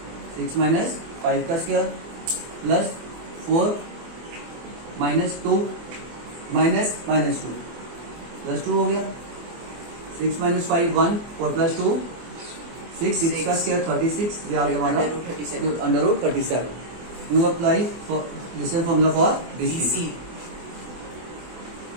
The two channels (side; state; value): left; late; 24 ms